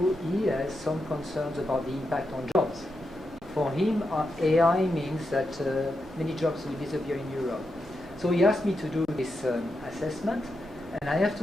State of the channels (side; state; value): both; normal; correlation 0.86